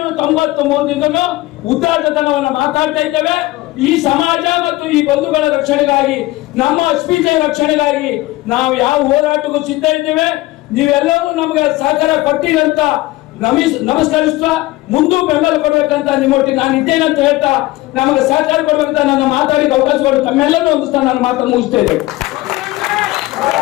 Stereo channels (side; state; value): right; quieter; 18.9 dB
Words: ಉದ್ದಾಟತನವನ್ನ ಮಾತಾಡ್ತಾ ಇದ್ದೇವೆ. ಈ ಸಮಾಜ ಮತ್ತು ಈ ಬಂಧುಗಳ ರಕ್ಷಣೆಗಾಗಿ, ನಮ್ಮ ಅಸ್ಮಿತೆ ರಕ್ಷಣೆಗಾಗಿ ನಾವು ಯಾವ ಹೋರಾಟಕ್ಕೂ ಸಿದ್ಧ ಇದ್ದೇವೆ. ನೀವೆಲ್ಲರೂ ನಮ್ಗೆ ಸಹಕಾರ ಕೊಡ್ತೀರಂತ ನಮಸ್ಕರಿಸ್ತಾ ಮುಂದೂ ಬೆಂಬಲ ಕೊಡ್ಬೇಕಂತ ನಿಮ್ಮೊಟ್ಟಿಗೆ ನಾನು ಇದ್ದೇನೆ ಅಂತ ಹೇಳ್ತಾ ನಮಗೆ ಸಹಕಾರ ಕೊಡ್ಬೇಕಂತ ನನ್ನ ಮಾತಾಡಿಗೆ ಅವಕಾಶ ಕೊಟ್ಟು ತಮ್ಮೆಲ್ಲರೂ ಹೊಂದಿಸ್ತಾ ನಾನು ಮಾತನ್ನು ಮುಗಿಸ್ತಾ ಇದ್ದೇನೆ.